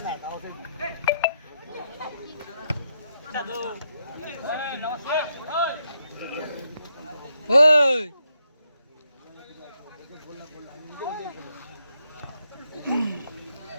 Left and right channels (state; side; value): inverted; both; correlation -0.80